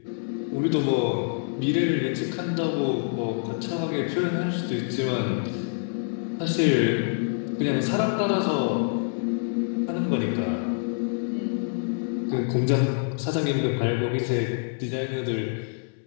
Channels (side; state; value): right; silent; digital silence